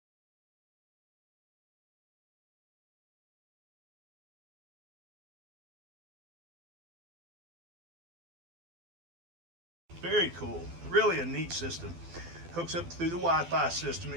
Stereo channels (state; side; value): late; left; 12 ms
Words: Very cool. Really a neat system. Hooks up through the Wi-Fi system.